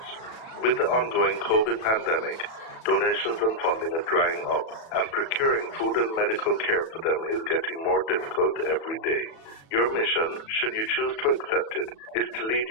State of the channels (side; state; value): right; late; 37 ms